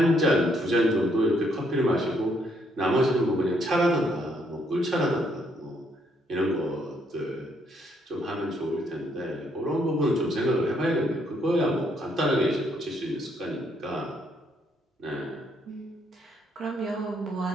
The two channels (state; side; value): normal; both; correlation 0.71